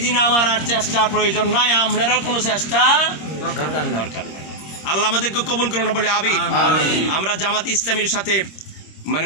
দিন আমার আর চেষ্টার প্রয়োজন নাই, আপনারও কোনো চেষ্টা দরকার নাই। আল্লাহ আমাদেরকে কবুল করুন বলে আমিন। আমরা জামাত ইসলামীর সাথে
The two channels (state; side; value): late; right; 26 ms